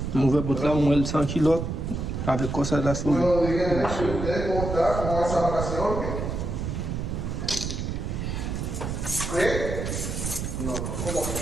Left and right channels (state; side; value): noise; right; rumble, 3 dB below the sound